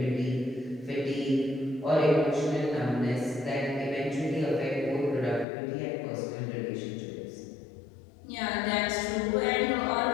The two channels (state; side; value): drops out; right; at 5.5 s